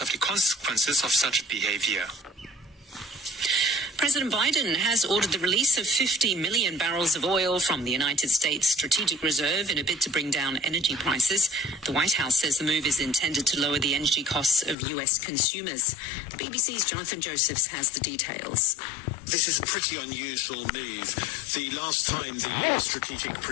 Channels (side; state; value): right; drops out; at 14.8 s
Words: of the consequences of such behaviour. President Biden has ordered the release of 50 million barrels of oil from the United States Strategic Reserve in a bid to bring down energy prices. The White House says the move is intended to lower the energy costs of U.S. consumers. The BBC's Jonathan Josephs has the details. This is a pretty unusual move. The last time the Strategic